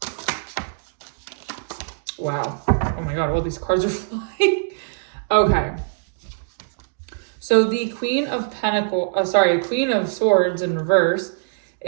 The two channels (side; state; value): left; silent; digital silence